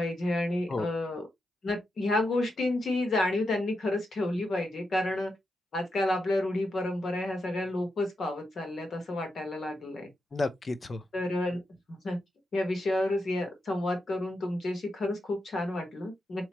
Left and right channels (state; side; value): normal; both; correlation 0.86